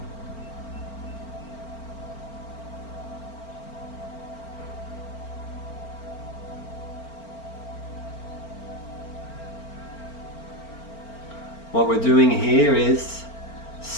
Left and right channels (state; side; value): late; right; 4.4 ms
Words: What we're doing here is